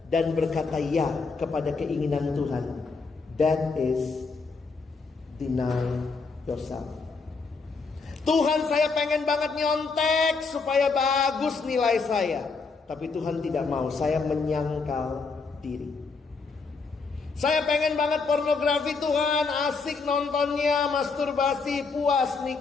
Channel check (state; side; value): quieter; right; 4.5 dB